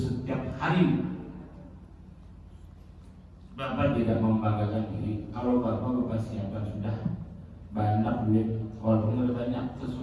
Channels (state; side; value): identical; both; correlation 1.00